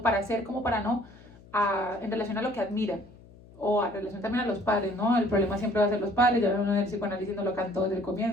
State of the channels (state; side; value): noise; left; hum, 23 dB below the sound